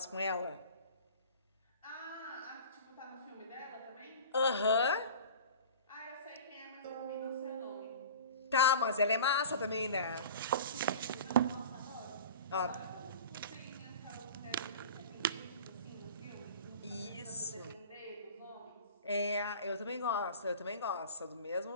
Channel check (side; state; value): both; inverted; correlation -0.39